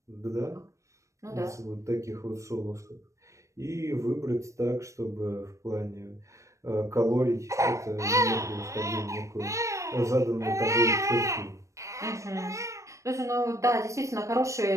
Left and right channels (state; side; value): late; left; 0.15 ms